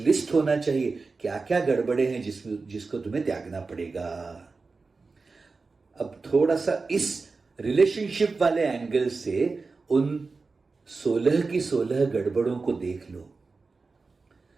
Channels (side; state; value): left; quieter; 4.1 dB